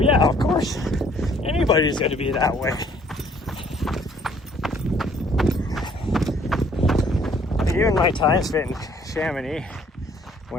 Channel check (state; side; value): normal; both; correlation 0.60